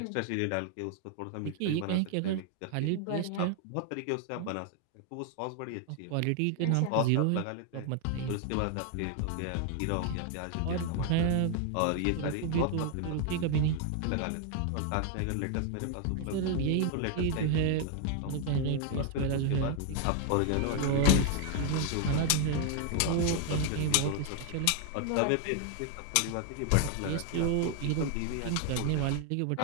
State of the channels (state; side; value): different; both; correlation 0.00